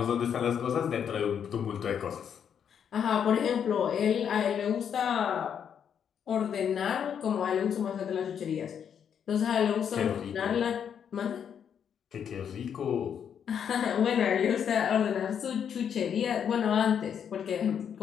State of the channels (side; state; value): right; quieter; 8.1 dB